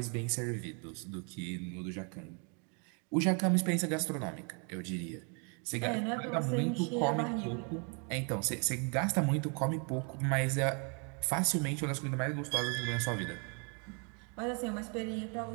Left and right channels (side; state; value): left; quieter; 36.8 dB